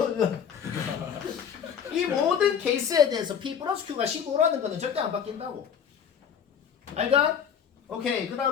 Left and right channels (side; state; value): right; quieter; 7.8 dB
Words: 플러스 Q가 15라는 거는 절대 안 바뀐다고. 알까? 오케이. 그